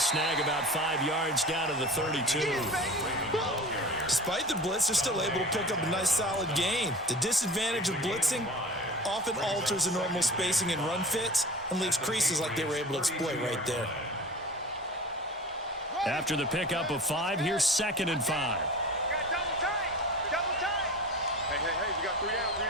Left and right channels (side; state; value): both; normal; correlation 0.37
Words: about 5 yards down to the 32. Despite the blitz, they're still able to pick up a nice solid gain. The disadvantage of blitzing often alters the normal spacing and run fits and leaves creases like they were able to exploit right there. After the pickup of 5, here's 2nd and 5. Got double tight. Double tight. Hey, we got 3 down, 3